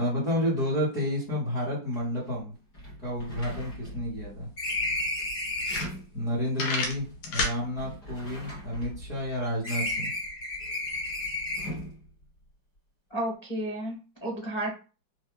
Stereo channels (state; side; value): late; right; 5.0 ms